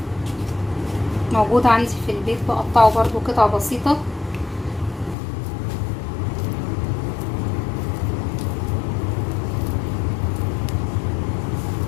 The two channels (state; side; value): drops out; right; at 5.2 s